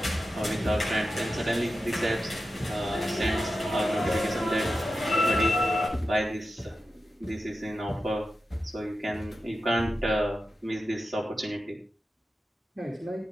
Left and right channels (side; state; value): both; normal; correlation 0.91